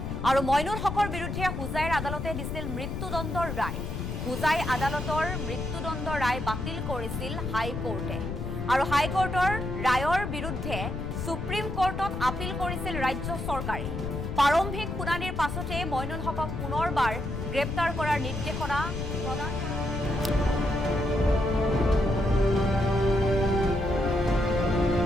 আৰু মইনুল হকৰ বিৰুদ্ধে হুজাইৰ আদালতে দিছিল মৃত্যুদণ্ডৰ ৰায়। হুজাই আদালতৰ মৃত্যুদণ্ড ৰায় বাতিল কৰিছিল হাইকোৰ্টে। আৰু হাইকোৰ্টৰ ৰায়ৰ বিৰুদ্ধে সুপ্ৰিম কোৰ্টত আপিল কৰিছিল ৰাজ্য চৰকাৰে। প্ৰাৰম্ভিক শুনানিৰ পাছতে মইনুল হকক পুনৰবাৰ গ্ৰেপ্তাৰ কৰাৰ নিৰ্দেশনা প্ৰদান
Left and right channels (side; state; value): left; noise; rumble, 5 dB below the sound